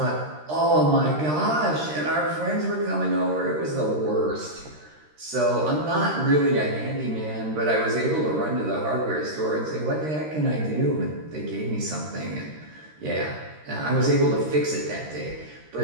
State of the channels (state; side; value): late; left; 13 ms